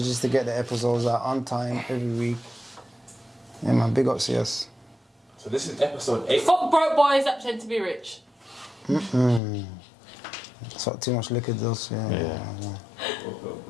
to get the episodes out on time every week. Yeah, man, big up CS. So this is episode 8. Fuck broke boys that pretend to be rich. That's what too much liquor does, yeah. Yeah.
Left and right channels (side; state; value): right; drops out; at 9.4 s